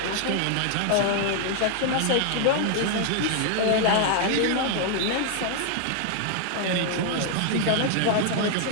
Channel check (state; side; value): different; both; correlation 0.00